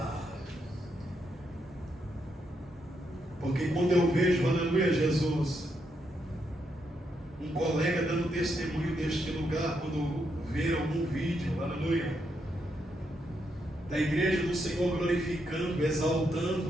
Porque quando eu vejo, aleluia, Jesus, um colega dando testemunho deste lugar, quando ver algum vídeo, aleluia, da igreja do Senhor glorificando,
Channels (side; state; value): both; normal; correlation 0.80